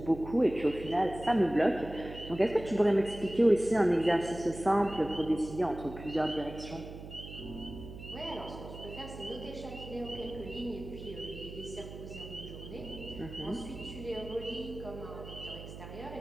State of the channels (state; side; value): noise; right; hum, 12 dB below the sound